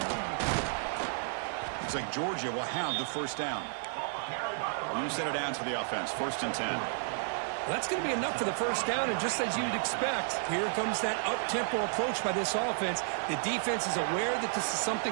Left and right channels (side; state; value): left; silent; digital silence